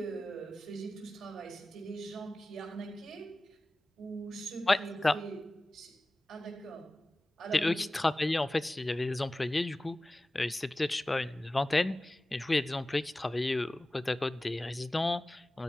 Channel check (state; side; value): normal; both; correlation 0.97